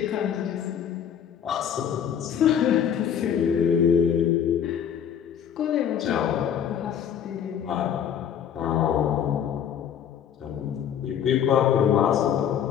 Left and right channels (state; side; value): quieter; right; 8.8 dB